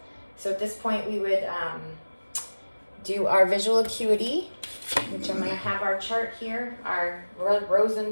So at this point, we would do our visual acuity, which I'm going to have our chart here, our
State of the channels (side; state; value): both; inverted; correlation -1.00